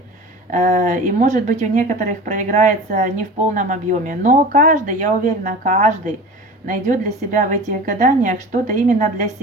и может быть у некоторых проиграется не в полном объеме, но каждый, я уверена, каждый найдет для себя в этих гаданиях что-то именно для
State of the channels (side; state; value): both; normal; correlation 0.35